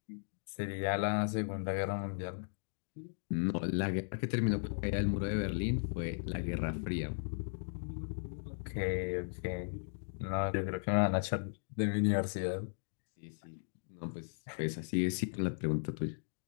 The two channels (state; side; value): silent; right; digital silence